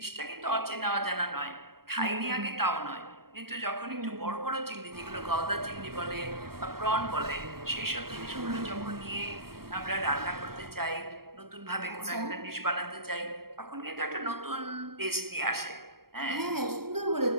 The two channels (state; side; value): late; left; 0.94 ms